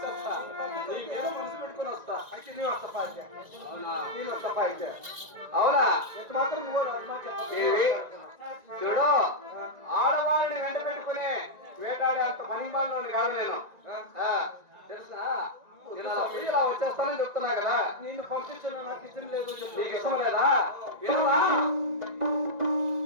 నీ మీద మనసు పెట్టుకుని వస్తా. అయితే నేను వస్తా. అవునా? నేను వస్తా. అయితే అవునా? ఎంత మాత్రం నువ్వు చూడు, ఆడవాళ్ళని వెంట పెట్టుకుని వేటాడే అంత పనిమాలని కాదు నేను. తెలుసా? ఇలా వచ్చేస్తానని చెప్తున్నా కదా. నేను పంపించాను, నాకు ఇష్టం లేదు. నీకు ఇష్టం లేదా?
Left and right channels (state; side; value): late; left; 1.9 ms